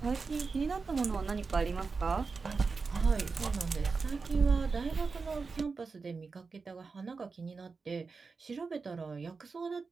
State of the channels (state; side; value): quieter; left; 4.6 dB